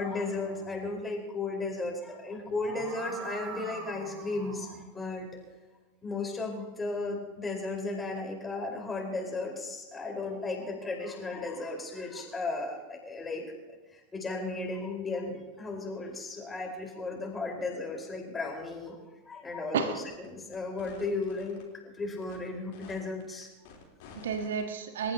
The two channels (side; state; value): both; normal; correlation 0.42